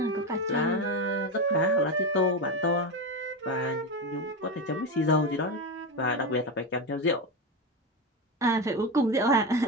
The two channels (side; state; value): both; normal; correlation 0.16